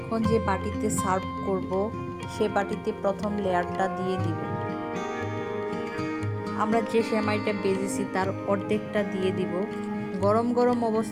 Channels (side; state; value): both; identical; correlation 1.00